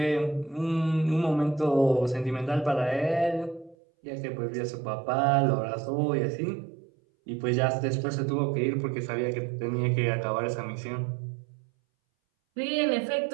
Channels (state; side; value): drops out; left; at 3.8 s